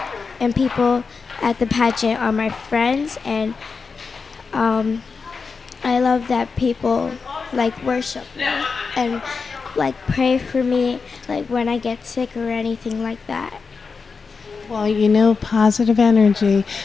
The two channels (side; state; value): right; quieter; 4.9 dB